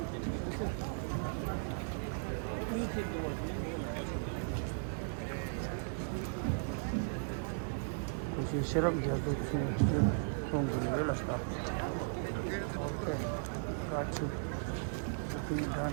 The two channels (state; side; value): silent; left; digital silence